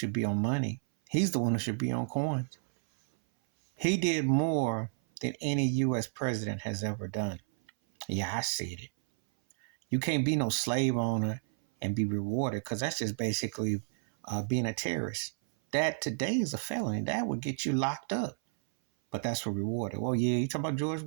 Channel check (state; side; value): silent; left; 57 dB below the other